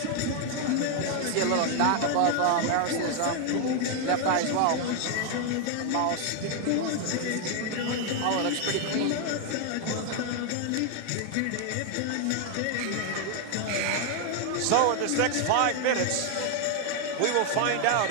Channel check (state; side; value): different; both; correlation 0.00